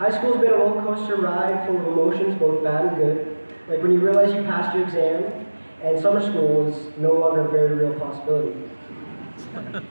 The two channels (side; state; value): both; inverted; correlation -1.00